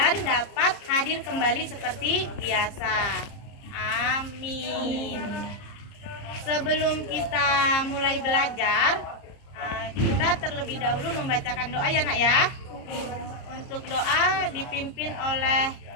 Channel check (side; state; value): right; late; 30 ms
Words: dapat hadir kembali seperti biasa. Amin. Sebelum kita mulai belajar, kita terlebih dahulu membacakan doa ya Nak ya. Untuk doa dipimpin oleh